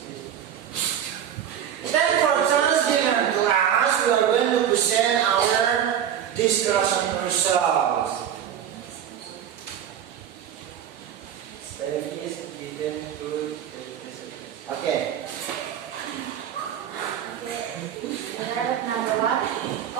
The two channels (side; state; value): left; quieter; 9.5 dB